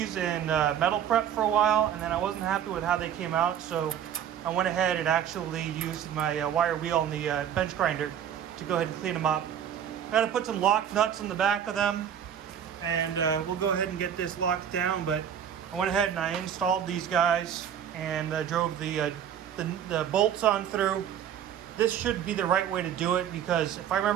in metal prep for a while, and then I wasn't happy with how they came out, so I went ahead and actually used my wire wheel and the bench grinder to go ahead and clean them up. I got to put some lock nuts in the back of them, and we'll go ahead and get this locked down. But I went ahead and I installed these guys and drove the bolts on through. This should be the right way to do it, because if I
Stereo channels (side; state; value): left; quieter; 9.3 dB